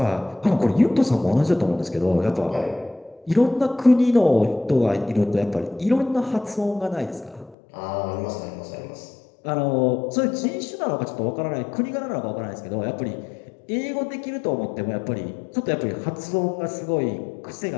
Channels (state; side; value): drops out; right; at 7.6 s